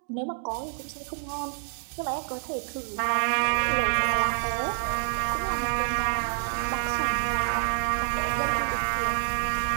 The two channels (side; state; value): left; silent; digital silence